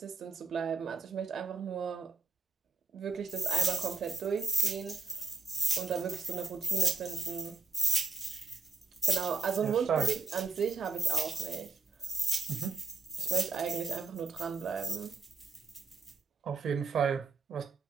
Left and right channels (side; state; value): left; quieter; 4.2 dB